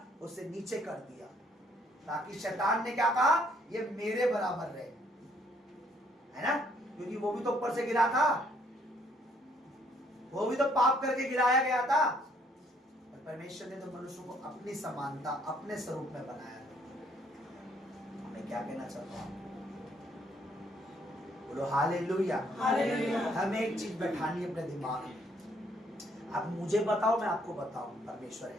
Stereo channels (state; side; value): normal; both; correlation 0.66